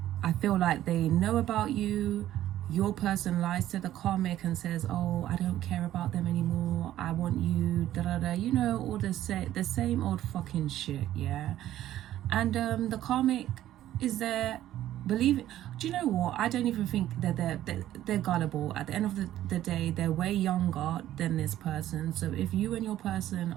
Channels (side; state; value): left; quieter; 13.1 dB